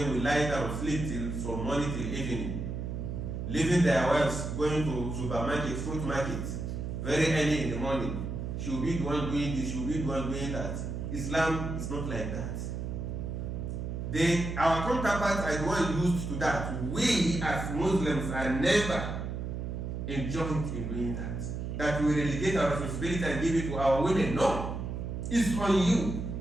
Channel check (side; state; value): right; noise; hum, 4 dB below the sound